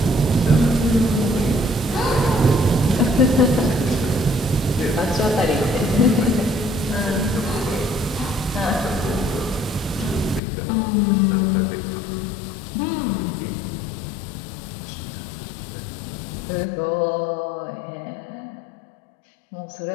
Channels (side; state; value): right; drops out; at 10.4 s